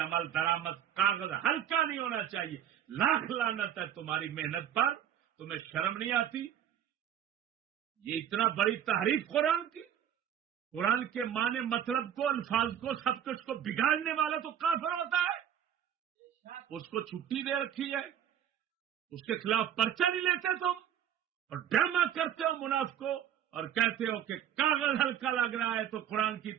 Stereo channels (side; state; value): left; quieter; 9.8 dB